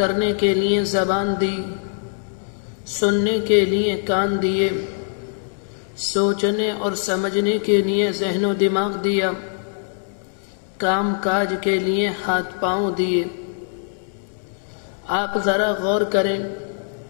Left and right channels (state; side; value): silent; right; 64 dB below the other